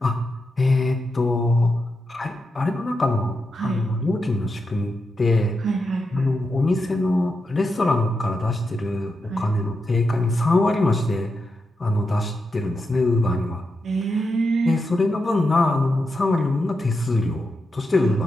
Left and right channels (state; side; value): normal; both; correlation 0.87